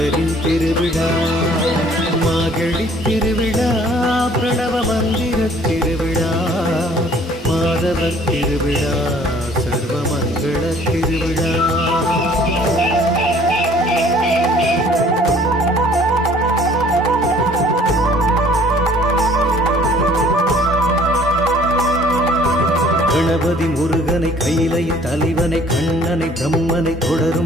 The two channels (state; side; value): normal; both; correlation 0.56